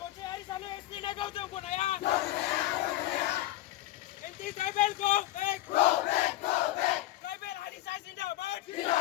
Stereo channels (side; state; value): right; quieter; 15.5 dB